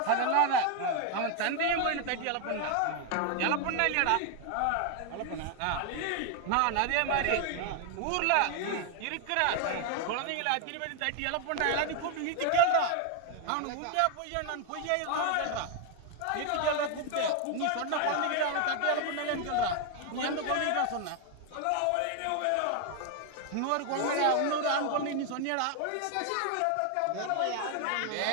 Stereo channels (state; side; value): different; both; correlation 0.01